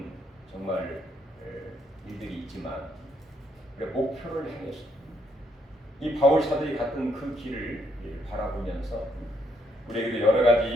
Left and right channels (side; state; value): both; normal; correlation 0.74